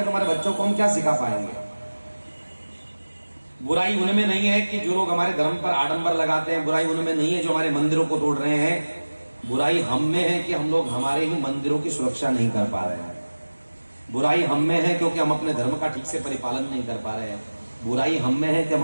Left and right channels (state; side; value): inverted; both; correlation -1.00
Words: तो हमारे बच्चों को हम क्या सिखा पाएंगे। बुराई उनमें नहीं है कि जो लोग हमारे धर्म पर आडंबर लगाते हैं, बुराई उनमें नहीं है जो हमारे मंदिरों को तोड़ रहे हैं। बुराई हम में है कि हम लोग हमारे ही मंदिरों की सुरक्षा नहीं कर पा रहे हैं। बुराई हम में है क्योंकि हम अपने धर्म का ठीक से परिपालन नहीं कर पा रहे हैं। बुराई हम में है कि हम